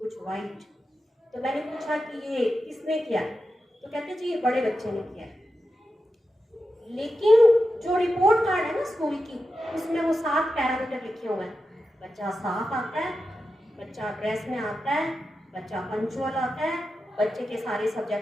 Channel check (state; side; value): normal; both; correlation 0.90